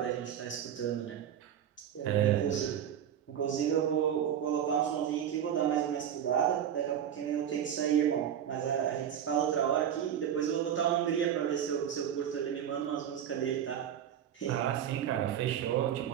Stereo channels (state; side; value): quieter; left; 9.5 dB